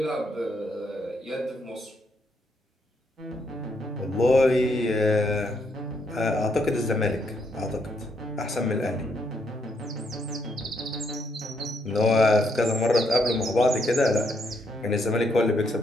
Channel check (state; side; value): normal; both; correlation 0.74